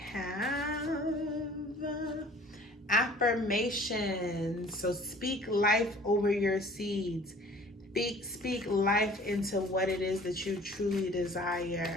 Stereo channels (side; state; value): both; normal; correlation 0.50